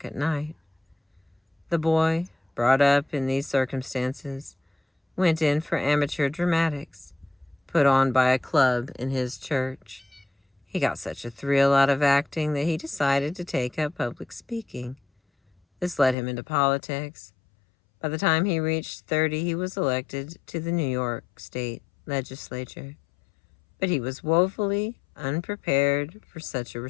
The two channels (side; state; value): right; drops out; at 16.2 s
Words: at night. The boy, brought up in these circumstances, went in for amateur dramatics, put on by a club in his church. He got such a thrill out of acting that he decided to take up public speaking. This led him into politics. By the time he reached 30, he was elected to the New York State Legislature. But he was woefully unprepared for such a